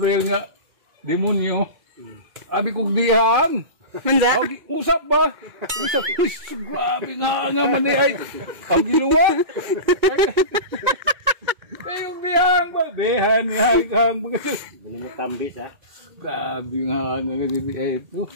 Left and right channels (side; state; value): left; late; 2.2 ms